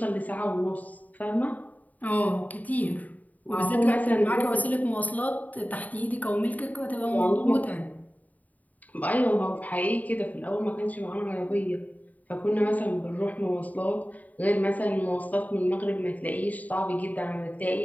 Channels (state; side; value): late; right; 0.075 ms